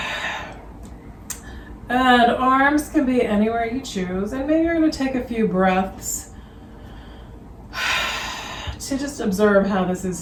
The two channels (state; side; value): identical; both; correlation 1.00